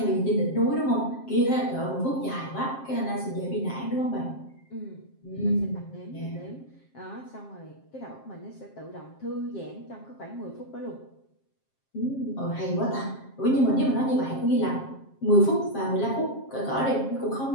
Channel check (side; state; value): right; late; 7.5 ms